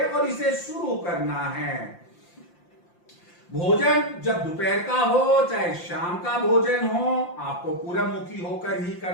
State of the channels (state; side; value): late; right; 5.7 ms